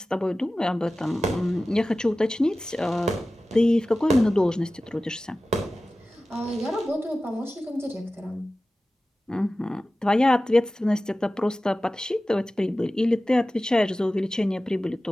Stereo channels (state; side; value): normal; both; correlation 0.96